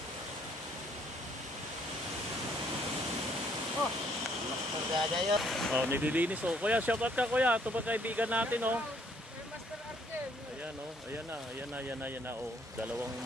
Oh, nililinis oh. Kuya, shoutout ka kuya. Ito ba kaibigan natin oh. Master RJ. Ayan oh. Ayan na oh. Dalawang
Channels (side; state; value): both; normal; correlation 0.66